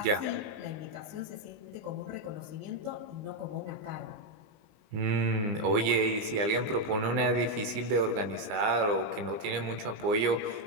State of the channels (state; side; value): late; left; 20 ms